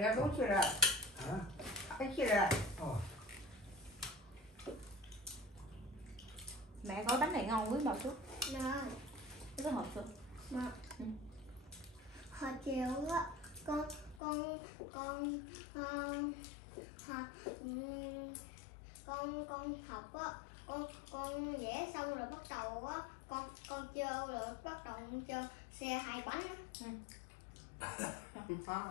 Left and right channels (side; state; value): right; drops out; at 14.2 s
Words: ra đúng chưa rồi? 啊， Cái chưa rồi? 哦， Mẹ gói bánh này ngon quý bà chú. Nè. Cái hộp xưa. Mà hồi chiều á con con học á, con vẽ xong rồi bắt đầu á con chơi rồi bắt đầu con chơi xe hai bánh á.